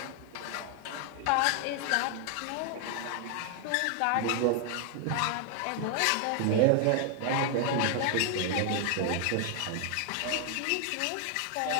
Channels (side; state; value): both; different; correlation 0.00